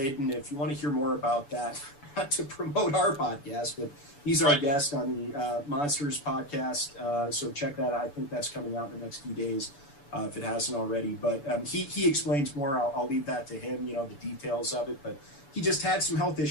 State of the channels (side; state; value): right; late; 7.0 ms